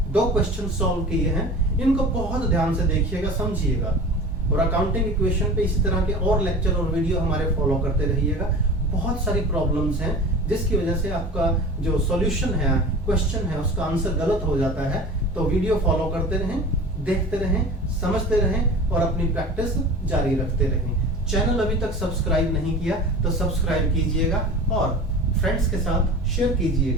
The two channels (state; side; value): normal; both; correlation 0.37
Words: 2 क्वेश्चन सॉल्व किए हैं। इनको बहुत ध्यान से देखिएगा, समझिएगा, और अकाउंटिंग इक्वेशन पे इसी तरह के और लेक्चर और वीडियो हमारे फॉलो करते रहिएगा। बहुत सारी प्रॉब्लम्स हैं जिसकी वजह से आपका जो सॉल्यूशन है, क्वेश्चन है, उसका आंसर गलत हो जाता है। तो वीडियो फॉलो करते रहें, देखते रहें, समझते रहें और अपनी प्रैक्टिस जारी रखते रहें। चैनल अभी तक सब्सक्राइब नहीं किया तो सब्सक्राइब कीजिएगा और फ्रेंड्स के साथ शेयर